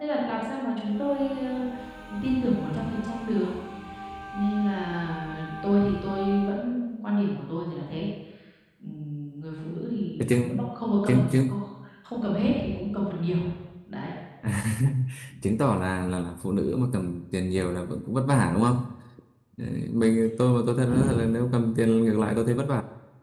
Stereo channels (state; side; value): identical; both; correlation 1.00